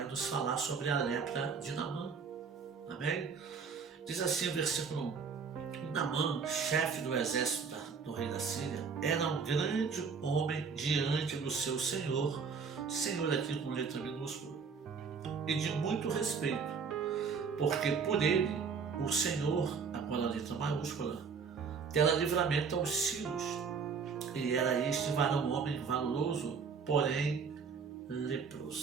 nos falar sobre a lepra de Naamã, amém? Diz assim o versículo 1: Naamã, chefe do exército do rei da Síria, era um grande homem diante do seu senhor aqui com letra minúscula, e de muito respeito, porque por ele, o Senhor, agora a letra maiúscula, dera livramento aos sírios, e era este varão homem valoroso, porém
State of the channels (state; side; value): quieter; left; 5.6 dB